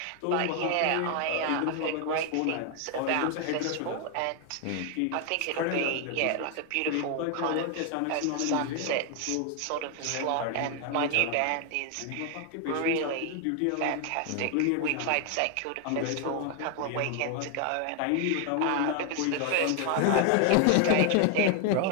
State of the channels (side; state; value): both; different; correlation 0.00